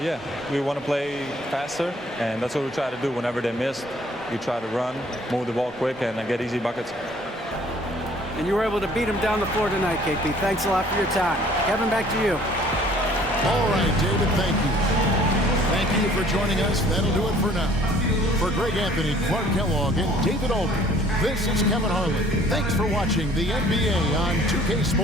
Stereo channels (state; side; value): normal; both; correlation 0.56